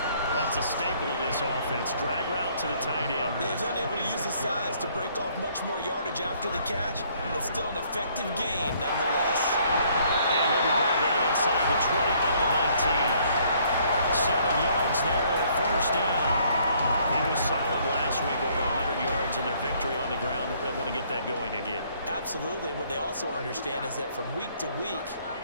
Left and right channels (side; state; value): both; inverted; correlation -0.64